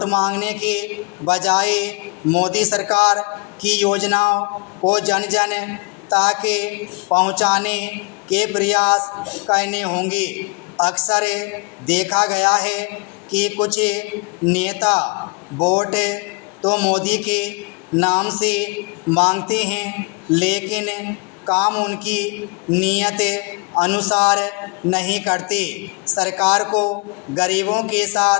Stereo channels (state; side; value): quieter; right; 30.2 dB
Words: मांगने के बजाय मोदी सरकार की योजनाओं को जन जन तक पहुंचाने के प्रयास करने होंगे। अक्सर देखा गया है कि कुछ नेता वोट तो मोदी के नाम से मांगते हैं, लेकिन काम उनकी नीयत अनुसार नहीं करते। सरकार को गरीबों के